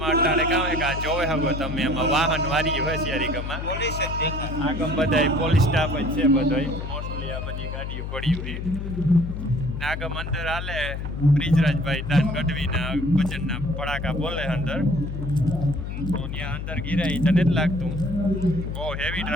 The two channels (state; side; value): noise; left; hum, 5 dB below the sound